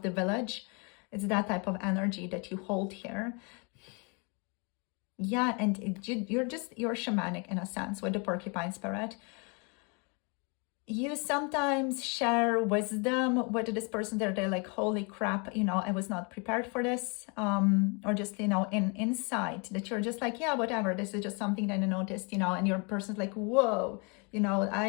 the village. It's that type of energy that you hold here. Yeah, and you're shamanic in a sense with the porcupine spirit. you sometimes share wisdom with this person. They're like, holy crap, you know, I was not prepared for this. Or just, you know, in insight that you're just like, yeah, whatever, this is just something that I noticed, you know, and your person's like, whoa, you know,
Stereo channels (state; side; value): quieter; right; 33.2 dB